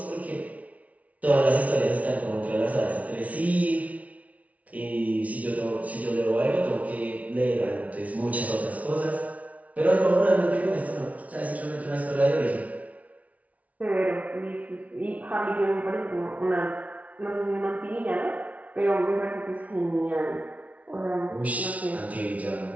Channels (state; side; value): late; left; 0.068 ms